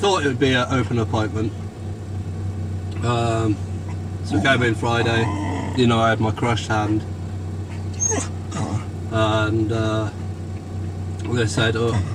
it would be an open appointment. So came in Friday. You know, I had my crushed hand, and they said, "Oh,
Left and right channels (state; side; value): identical; both; correlation 1.00